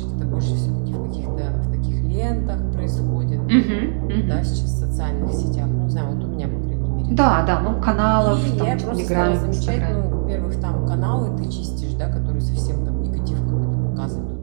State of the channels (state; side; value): silent; left; digital silence